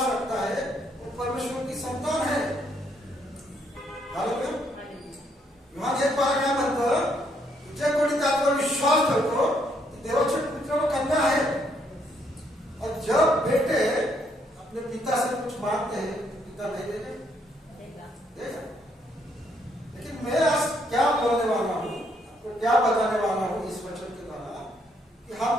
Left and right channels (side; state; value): both; normal; correlation 0.72